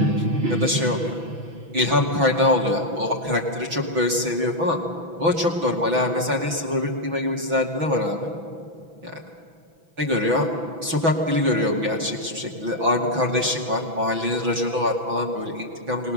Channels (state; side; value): late; left; 6.0 ms